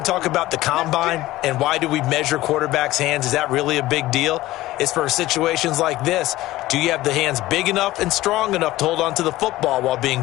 talk about the combine and why do we measure quarterbacks' hands. Is that really a big deal? It's for situations like this. Do you have the hands big enough and strong enough to hold on to the football while being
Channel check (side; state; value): right; quieter; 16.9 dB